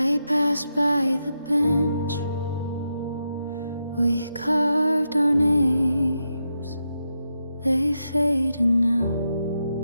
passed by the bench, we carved our names. They faded now,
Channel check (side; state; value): both; inverted; correlation -0.86